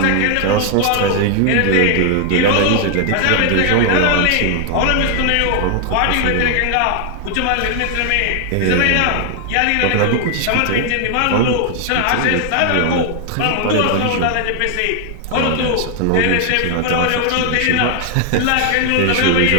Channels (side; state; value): both; different; correlation 0.00